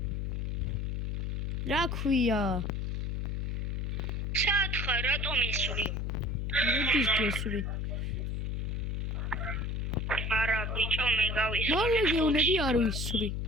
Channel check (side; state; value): left; noise; hum, 1 dB below the sound